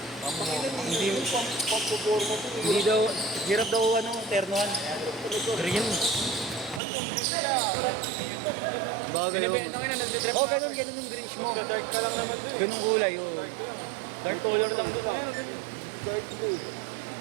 daw, hirap daw ternohan. Green. Binibenta nga na, nagtitrip Oh, ganun yung greenish mo. Dark ka lang naman doon. Ganung kulay, oh. Dark color lang doon.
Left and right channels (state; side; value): drops out; left; at 6.8 s